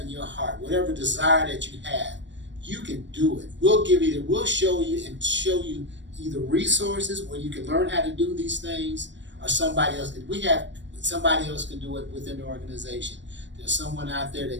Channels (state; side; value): late; left; 0.53 ms